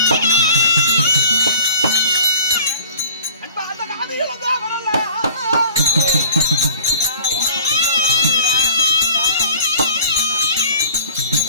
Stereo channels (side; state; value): both; inverted; correlation -0.48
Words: அன்பா அந்த காதியில தான் வரல.